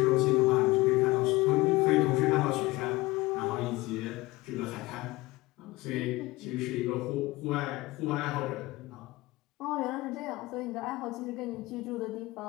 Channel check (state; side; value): quieter; right; 20.5 dB